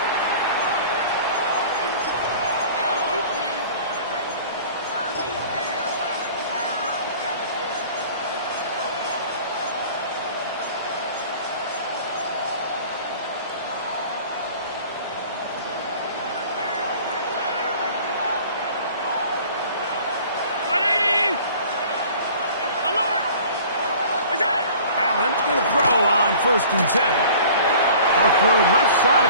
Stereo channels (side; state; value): both; inverted; correlation -0.47